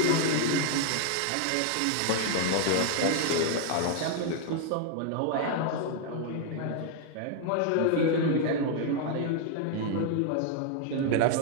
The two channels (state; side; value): different; both; correlation 0.00